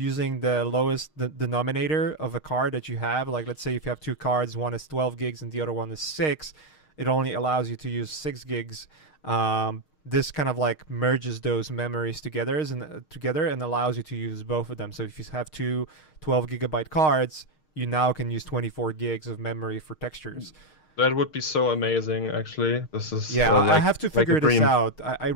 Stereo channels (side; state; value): right; late; 6.5 ms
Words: the lowest denominator of a card that you have, like let's say if you have two cards, one is 12 gigs and the other one is 6, it only allows you to use 6 gigs. This kind of like merges those memories together and allows you to use both of them. So if you have two 12 gigabyte cards, you now can use 24 gigs of memory for textures. That would be so amazing, actually. This is Yeah, I like have to like a figure this dream. out. I